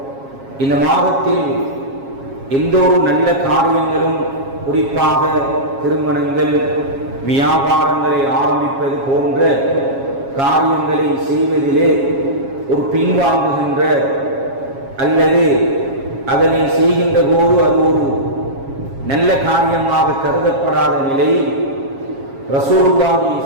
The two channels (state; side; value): late; left; 7.3 ms